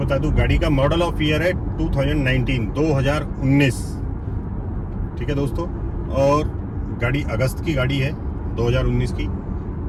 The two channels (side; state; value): both; identical; correlation 1.00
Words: दूं, गाड़ी का मॉडल ऑफ ईयर है 2019। ठीक है दोस्तों, और गाड़ी अगस्त की गाड़ी है 2019 की।